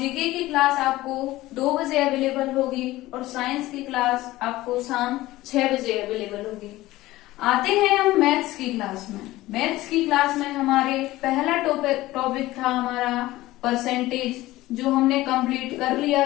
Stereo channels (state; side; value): quieter; right; 17.3 dB